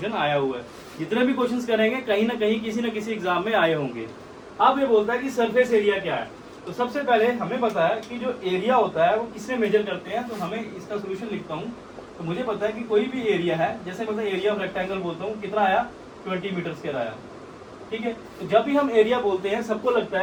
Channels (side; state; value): both; identical; correlation 1.00